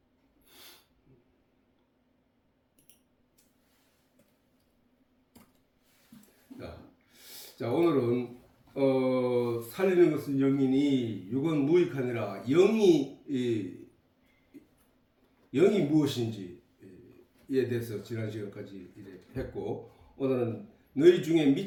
자 오늘은 살리는 것은 영이니 육은 무익하니라. 영이 무엇인지에 대해서 지난 시간까지 했고 오늘은 너희 중에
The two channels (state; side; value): identical; both; correlation 1.00